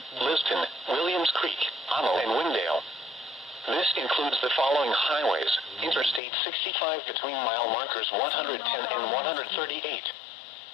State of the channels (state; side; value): drops out; right; at 6.2 s